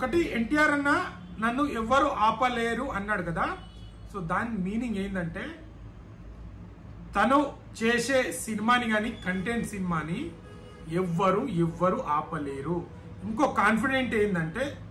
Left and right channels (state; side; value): identical; both; correlation 1.00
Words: ఎన్టీఆర్ అన్న నన్ను ఎవ్వరు ఆపలేరు అన్నాడు కదా, సో దాని మీనింగ్ ఏంటంటే తను చేసే సినిమాని కానీ కంటెంట్ సినిమాని ఎవ్వరు ఆపలేరు. ఇంకో కాన్ఫిడెంట్ ఏంటంటే